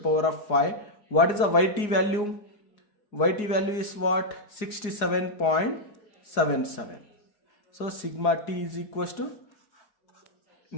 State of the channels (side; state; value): right; late; 4.8 ms